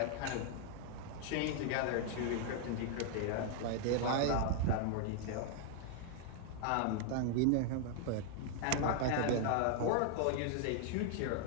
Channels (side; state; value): both; different; correlation 0.00